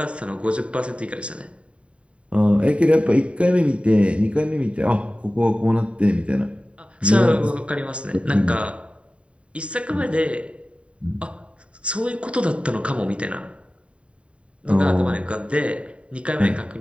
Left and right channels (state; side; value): late; left; 0.061 ms